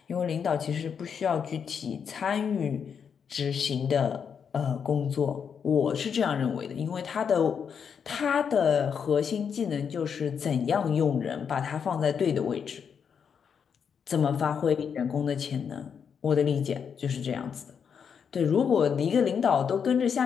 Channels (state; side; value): quieter; right; 7.0 dB